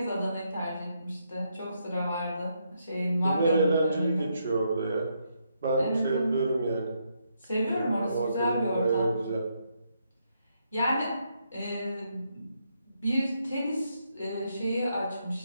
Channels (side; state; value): both; inverted; correlation -0.77